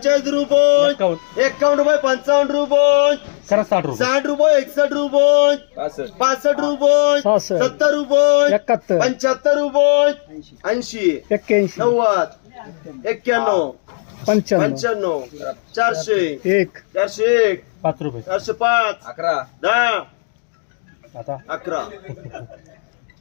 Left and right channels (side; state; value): right; silent; digital silence